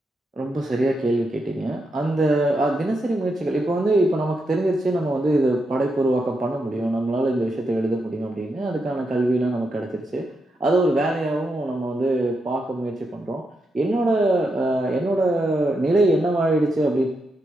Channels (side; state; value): both; normal; correlation 0.84